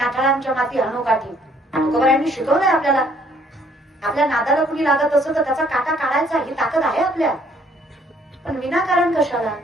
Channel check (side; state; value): both; normal; correlation 0.63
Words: माती हनुकाठी. तुकोबारायांनी शिकवलंय आपल्याला. आपल्या नादाला कुणी लागत असं तर त्याचा काटा काढायचा ही ताकद आहे आपल्या. पण विनाकारण कशाला.